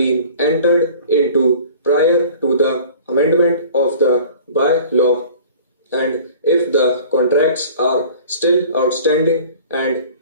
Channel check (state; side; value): inverted; both; correlation -0.45